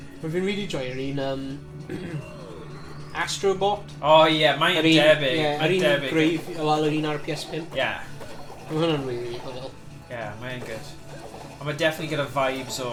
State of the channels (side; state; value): both; identical; correlation 1.00